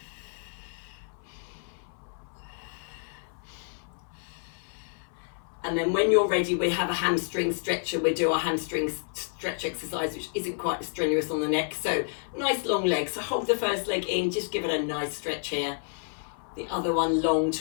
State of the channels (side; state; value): right; silent; 55 dB below the other